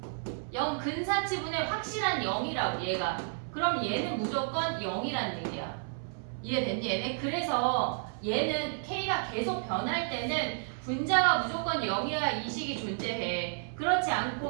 0 근사치분의 확실한 0이라고 얘가. 그럼 얘는 무조건 0이란 얘기야. 이해됐니 얘네? 그래서 얘는 k가 계속 변할 때는 분자가 무조건 0이어야 이 식이 존재해. 그렇지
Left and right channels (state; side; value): silent; left; 57 dB below the other